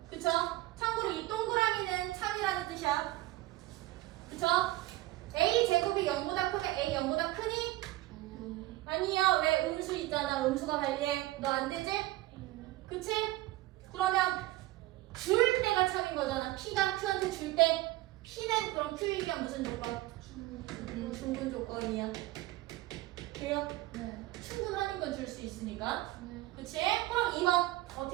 그쵸? 참고로 이 동그라미는 참이라는 뜻이야. 그쵸? A 제곱이 0보다 크면 A 0보다 크니? 아니요. 왜? 음수 있잖아. 음수가 관리해. 너 안 되지? 그치? 그러면 줄 때가 참인 거잖아. P가 Q한테 줄 때. P는 그럼 Q이면 무슨 조건? 충분 조건이야. 돼요? 네. 충분하는 건 줄 수 있으니까. 네. 그치? 그럼 2번.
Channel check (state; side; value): quieter; left; 17.8 dB